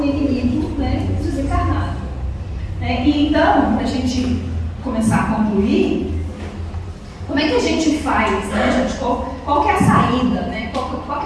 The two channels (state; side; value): identical; both; correlation 1.00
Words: inimigo, né, desencarnado. E então, para a gente começar a concluir, como é que a gente faz, né, gente? Qual que é a saída, né? Qual